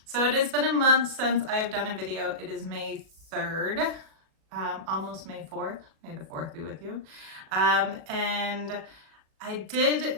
So it has been a month since I have done a video. It is May 3rd, almost May 4th. May the 4th be with you. And I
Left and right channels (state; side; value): late; left; 37 ms